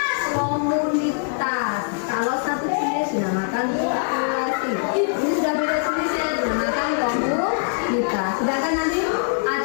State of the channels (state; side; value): silent; right; digital silence